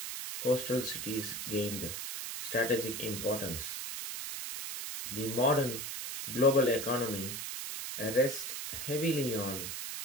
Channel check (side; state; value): right; noise; hiss, 5 dB below the sound